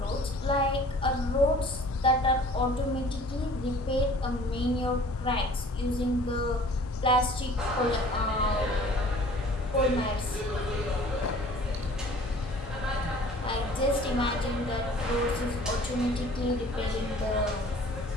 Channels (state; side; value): normal; both; correlation 0.49